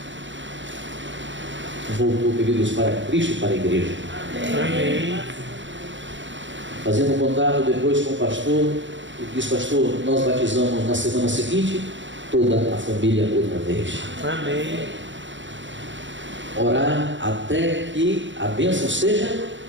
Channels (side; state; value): left; late; 0.54 ms